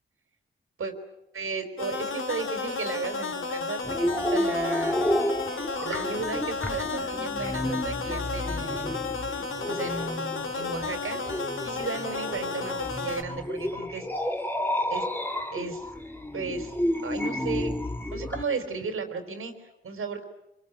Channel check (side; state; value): both; normal; correlation 0.39